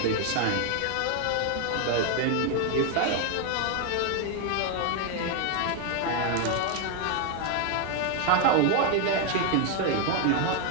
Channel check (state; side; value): different; both; correlation 0.00